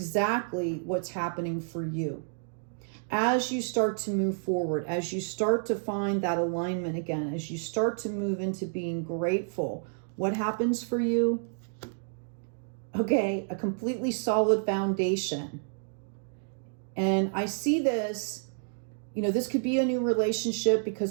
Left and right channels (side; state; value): left; silent; digital silence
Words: what's happening for you. As you start to move forward, as you start to find that alignment again, as you start to move into being grateful, what happens for you? Okay, a completely solid foundation. And I see this, you know, this could be a new relationship